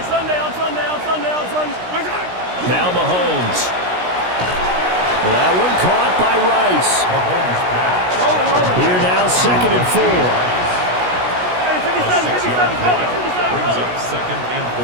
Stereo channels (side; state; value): left; late; 16 ms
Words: Now Mahomes. That one caught by Rice. Here now, 2nd and 4. Brings up 2nd and 4.